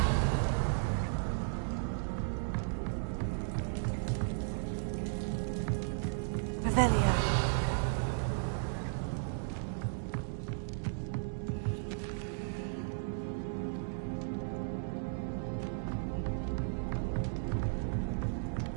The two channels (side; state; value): left; silent; digital silence